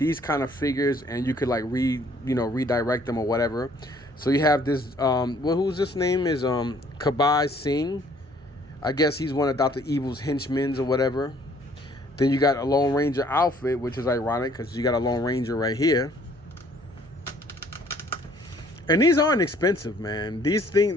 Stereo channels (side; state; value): both; normal; correlation 0.60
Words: kind of figures and you could like redirect them or whatever. So you have this, who's this name is Kabbai Singh. I guess he's one of Dr. Evil's henchmen or whatever. Then you got a Lone Ranger outfit, which is ironic because you got a Lone Ranger right here. And these aren't expensive, man. These